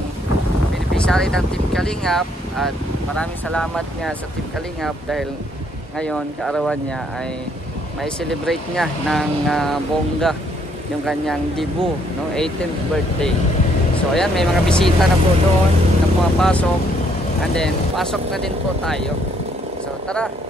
beneficiary ng Team Kalingap at maraming salamat nga sa Team Kalingap dahil ngayon kaarawan niya ay may celebrate niya ng bongga yung kanyang debut, no? 18th birthday. So ayan, may mga bisita na po doon na pumapasok and then pasok na din po tayo. So tara,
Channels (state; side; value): normal; both; correlation 0.68